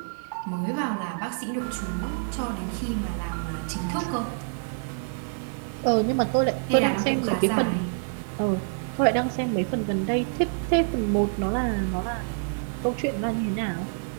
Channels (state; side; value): silent; left; digital silence